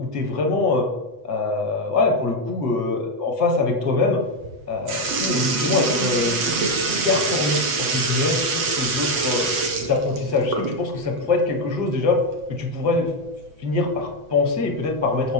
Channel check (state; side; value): late; left; 8.0 ms